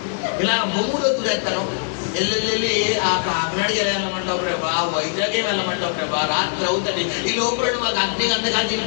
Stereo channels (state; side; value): silent; right; digital silence